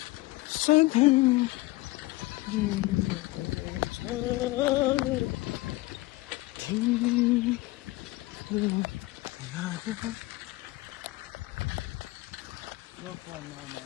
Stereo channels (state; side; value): quieter; right; 20.3 dB